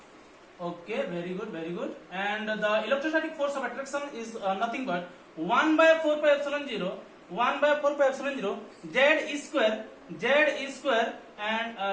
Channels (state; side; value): identical; both; correlation 1.00